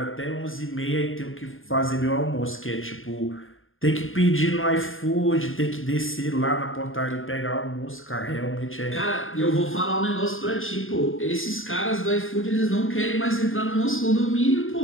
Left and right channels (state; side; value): late; right; 0.59 ms